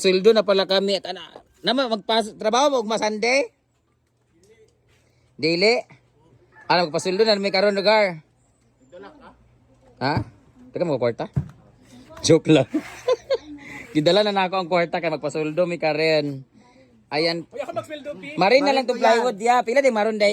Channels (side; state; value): both; identical; correlation 1.00